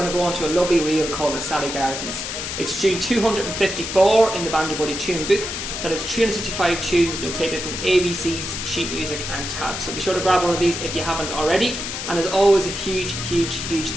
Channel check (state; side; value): noise; left; hiss, 5 dB below the sound